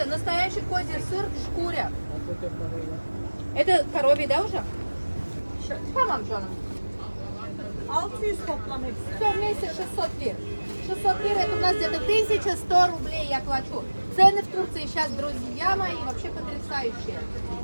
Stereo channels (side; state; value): both; inverted; correlation -1.00